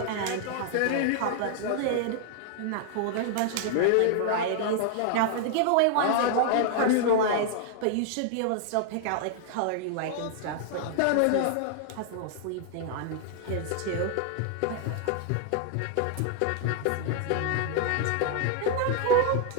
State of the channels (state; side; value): different; both; correlation 0.00